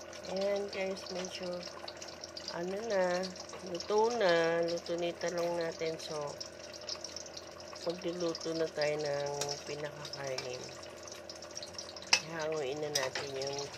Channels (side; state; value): both; identical; correlation 1.00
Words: Ayan guys, medyo luto na yung talong natin. So, magluluto na tayo ng pinakakainin. Hanguin na natin yung